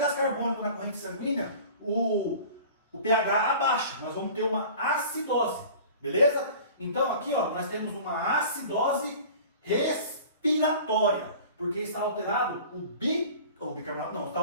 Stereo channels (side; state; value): both; inverted; correlation -0.43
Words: carbônico na corrente sanguínea, o pH abaixa. Nós vamos ter uma acidose. Beleza? Então aqui ó, nós temos uma acidose respiratória. Porque está alterado o bicarbonato, não, está